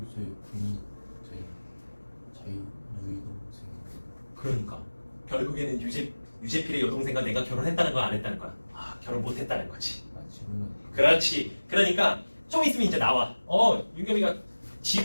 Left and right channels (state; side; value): inverted; both; correlation -1.00